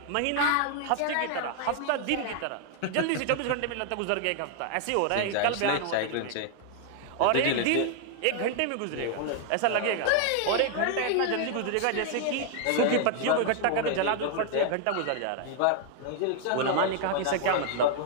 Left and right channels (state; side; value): different; both; correlation 0.00